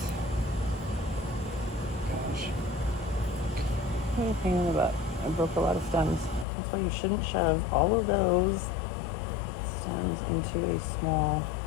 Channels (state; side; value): drops out; right; at 6.5 s